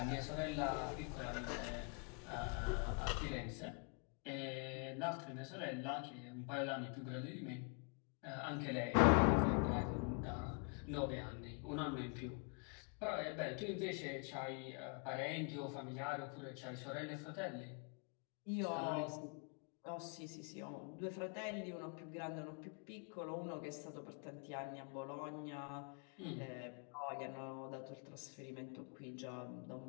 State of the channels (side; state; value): right; quieter; 37.3 dB